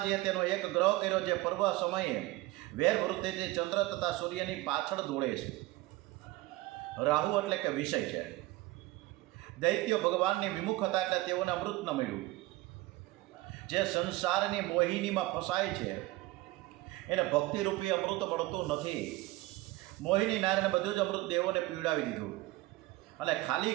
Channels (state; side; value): quieter; left; 19.2 dB